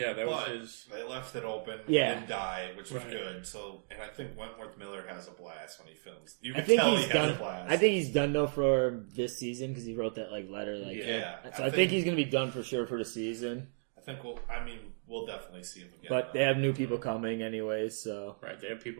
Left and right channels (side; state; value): left; silent; digital silence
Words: that was But his. they left it open. Yeah. He didn't die, which was Right. good. So, and I think Wentworth Miller has a blast when he films. You I can think tell he's he done. has a blast. I think he's done though for this season because he wrote that like letter. Like, Yeah. So I think he's gonna be done for sure for the season. I think we'll definitely see him again. But they have new people coming anyways, so Right, they have